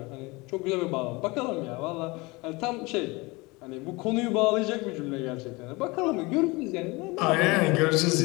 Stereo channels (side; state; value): right; quieter; 24.4 dB